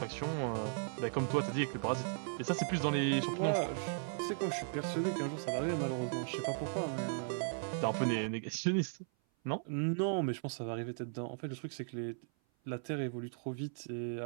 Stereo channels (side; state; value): left; silent; 53 dB below the other